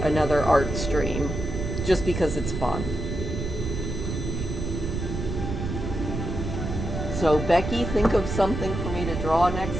art stream, just because it's fun. So Becky, think of something for me to draw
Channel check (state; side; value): noise; right; rumble, 4 dB below the sound